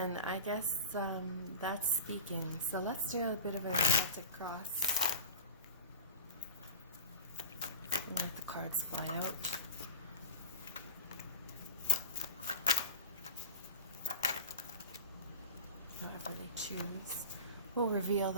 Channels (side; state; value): both; inverted; correlation -0.31